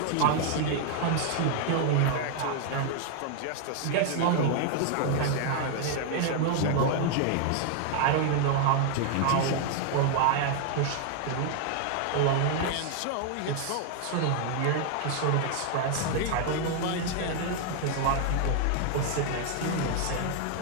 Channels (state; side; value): different; both; correlation 0.00